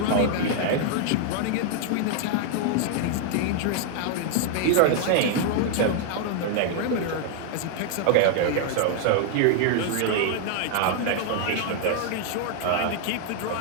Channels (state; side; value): different; both; correlation 0.00